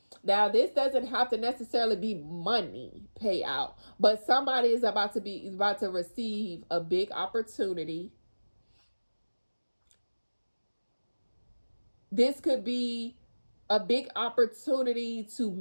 Now, this doesn't have to necessarily be money payout, but somebody is about to receive a big opportunity. This could be a big opportunity to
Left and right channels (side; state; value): both; inverted; correlation -1.00